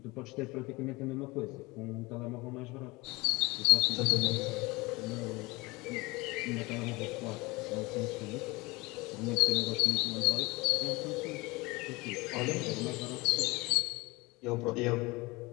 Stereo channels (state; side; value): quieter; right; 23.1 dB